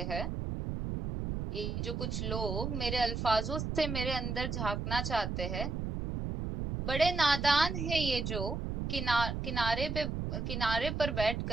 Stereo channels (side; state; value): right; noise; rumble, 3 dB below the sound